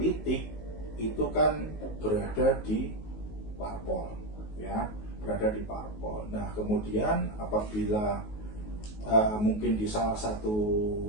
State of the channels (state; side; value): late; right; 19 ms